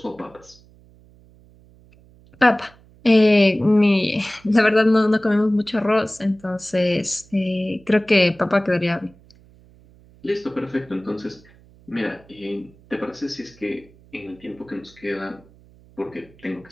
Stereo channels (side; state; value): right; noise; hum, 27 dB below the sound